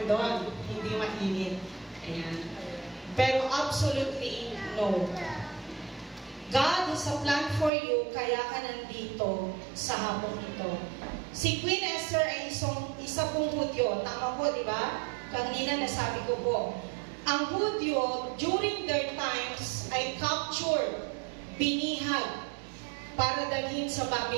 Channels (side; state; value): left; drops out; at 7.7 s